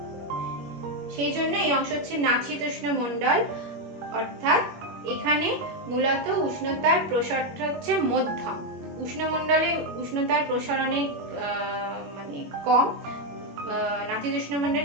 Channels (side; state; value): left; late; 21 ms